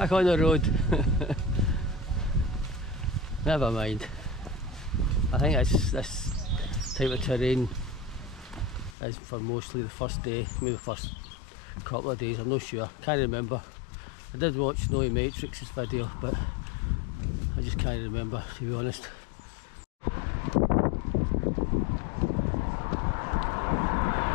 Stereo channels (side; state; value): right; drops out; at 9.0 s